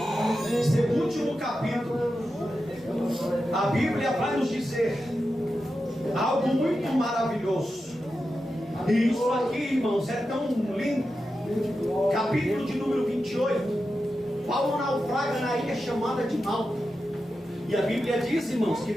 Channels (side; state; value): both; normal; correlation 0.90